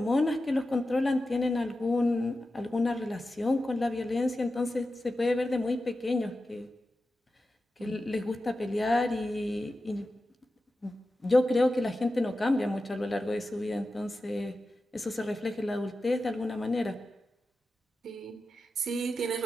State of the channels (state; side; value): normal; both; correlation 0.92